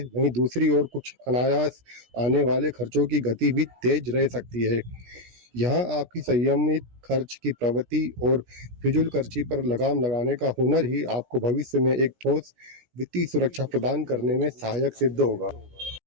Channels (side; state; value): left; late; 17 ms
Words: वहीं दूसरी ओर कुछ अनायास आने वाले खर्चों की गति भी तेज रह सकती है। यहाँ आपकी संयमित खर्च की प्रवृत्ति और फिजूल खर्ची पर लगाम लगाने का हुनर ही आपको भविष्य में एक ठोस वित्तीय सुरक्षा प्रदान करने में सहायक सिद्ध होगा।